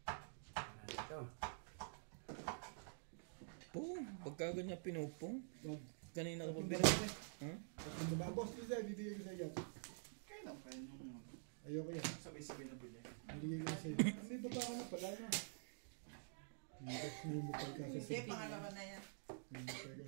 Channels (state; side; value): silent; left; digital silence